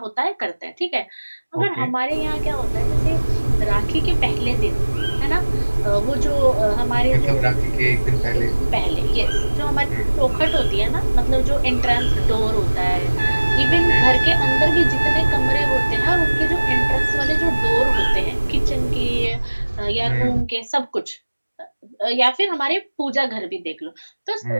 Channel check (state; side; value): inverted; both; correlation -1.00